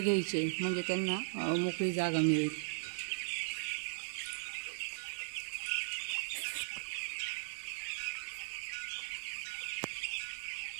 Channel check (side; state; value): left; silent; digital silence